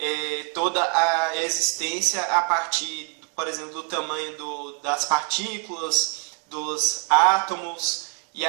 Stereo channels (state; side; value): quieter; left; 39.6 dB